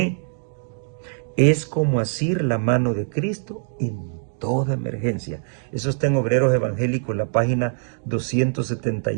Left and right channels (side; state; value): left; silent; digital silence